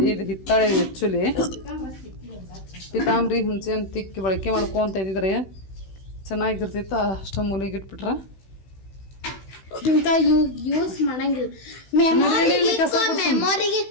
ಇದು ಹಿತ್ತಾಳೆ ಆ್ಯಕ್ಚುಲಿ. ಪಿತಾಂಬ್ರಿ ಹುಣಸೆ ಹಣ್ಣು ತಿಕ್ಕಿ ಬಳಕೆ ಮಾಡ್ಕೊಂತ ಇದ್ದಿದ್ರೆ ಚೆನ್ನಾಗಿರ್ತೈತೆ. ಅಷ್ಟ ಮೂಲೆಗೆ ಇಟ್ಬಿಟ್ರ ಇಂಥ ಯೂಸ್ ಮಾಡಂಗಿಲ್ಲ. ಮೆಮೊರಿಗೆ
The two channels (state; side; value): late; right; 16 ms